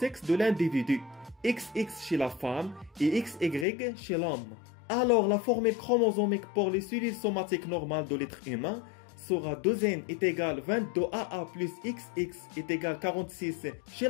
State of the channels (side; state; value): right; drops out; at 3.7 s